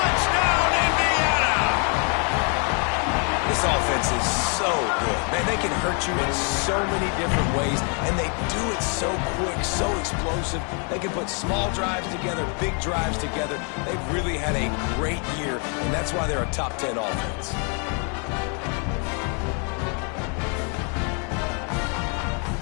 Indiana! This offense is so good. Man, they can hurt you in so many different ways, and they do it so quick, so explosive. They can put small drives together, big drives together. They've really had a great year, and that's why they're a top 10 offense.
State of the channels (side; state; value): right; quieter; 38.5 dB